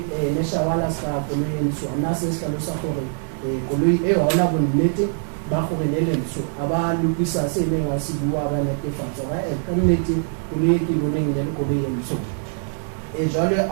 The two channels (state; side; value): silent; left; 58 dB below the other